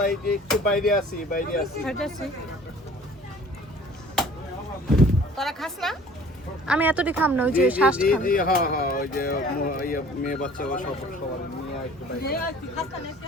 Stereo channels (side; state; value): both; normal; correlation 0.50